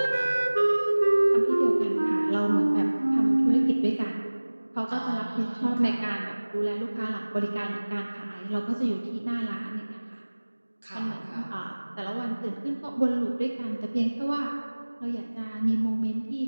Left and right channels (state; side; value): inverted; both; correlation -1.00